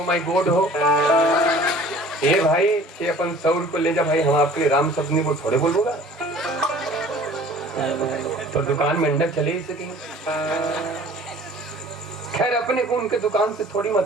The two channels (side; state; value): both; normal; correlation 0.48